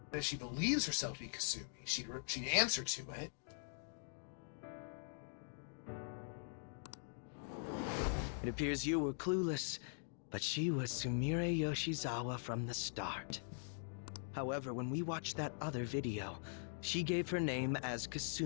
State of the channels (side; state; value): right; silent; digital silence